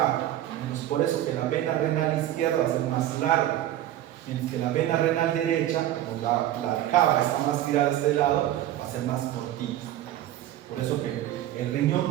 Entonces, por eso que la vena renal izquierda va a ser más larga. Mientras que la vena renal derecha, como la cava está más tirada a este lado, va a ser más cortita. Por eso que el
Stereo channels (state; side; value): quieter; left; 13.0 dB